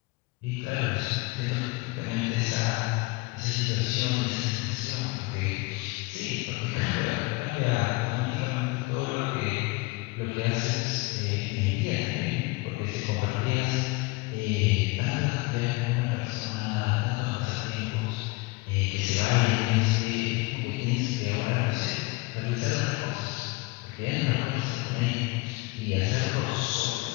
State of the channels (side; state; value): right; quieter; 23.8 dB